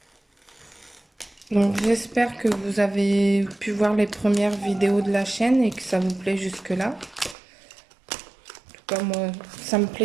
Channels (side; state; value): left; drops out; at 7.4 s